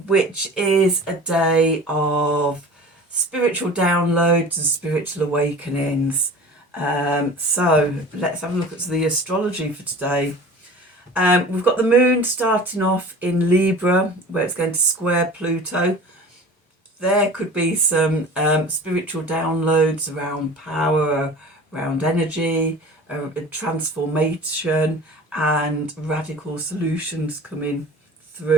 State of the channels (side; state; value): both; normal; correlation 0.40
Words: which is a day of spiritual downloads and spiritual awakenings. So let's have a look at the astrology for today. We've got the moon starting off in Libra, where it's going to square Pluto. There could be some spiritual downloads around power, around energy, transformation and radical solutions coming